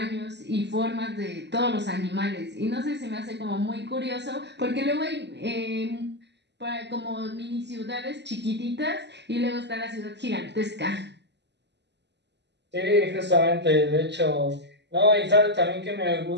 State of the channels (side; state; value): left; late; 0.50 ms